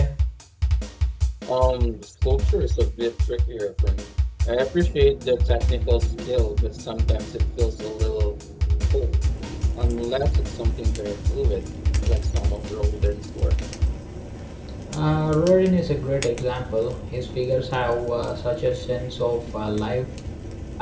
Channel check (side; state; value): both; identical; correlation 1.00